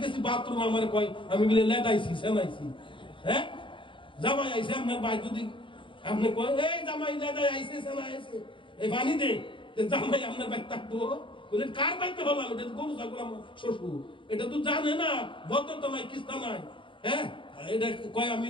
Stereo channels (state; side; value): late; right; 0.24 ms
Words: গেছি বাথরুম, আমার কয় আমি বলে লেদাইছি, সেনাইছি। হ্যাঁ জামাই আইছে আপনার ভাই, যদি আপনি কয় এই জামাই লেদাই আইছে, সেনা আইছে, এই বানি দে, জামাই আপনার ভাই থাকবো? বলে কার বাইতে হলাম? এটা তো গরু ছাগল আমার শ্বশুর, এটা তো জানে না, ভদ্রতা নাই, কিস্তা নাই। হ্যাঁ এটা কয় আমি